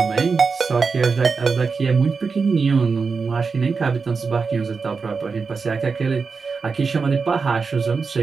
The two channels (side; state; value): left; quieter; 4.9 dB